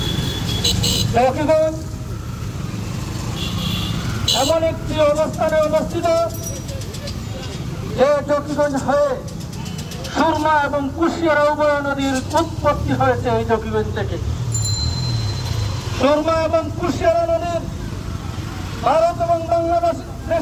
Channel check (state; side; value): identical; both; correlation 1.00